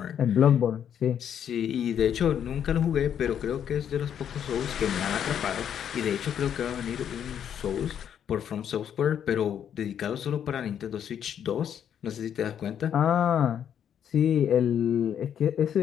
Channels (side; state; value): right; quieter; 9.0 dB